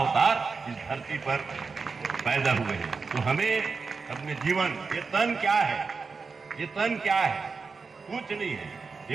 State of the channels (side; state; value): left; quieter; 4.7 dB